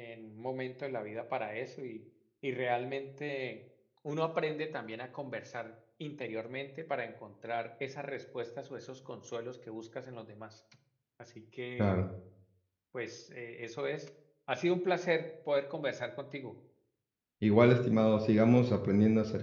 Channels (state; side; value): identical; both; correlation 1.00